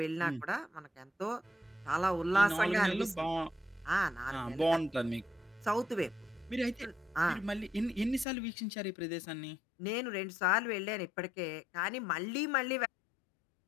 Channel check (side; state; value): right; drops out; at 8.2 s